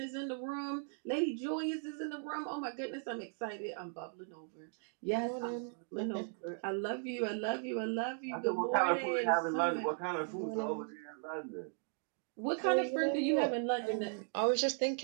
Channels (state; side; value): silent; left; 53 dB below the other